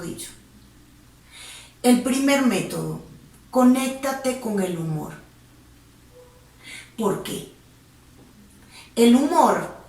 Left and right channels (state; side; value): identical; both; correlation 1.00